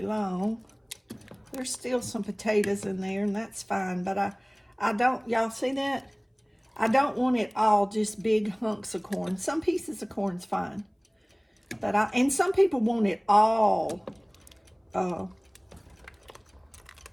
long. There's still some potatoes in there, and that's fine, but I don't, y'all see that? I don't want it all just big hunks of corn. Some pieces of corn's fine, but and some people want it all. I'm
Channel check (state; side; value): identical; both; correlation 1.00